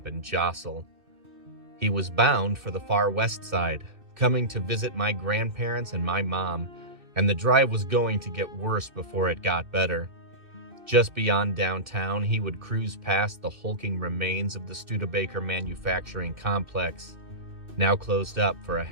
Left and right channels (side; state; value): left; late; 2.6 ms